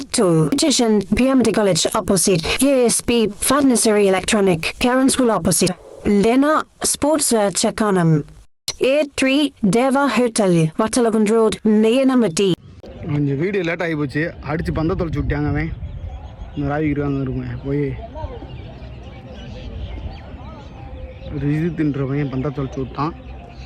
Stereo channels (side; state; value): both; identical; correlation 1.00